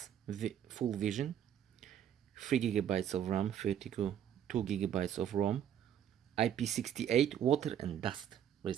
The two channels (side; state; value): left; quieter; 9.7 dB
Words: full vision, 3 GB of RAM, 32 GB of ROM, IP68 water and dust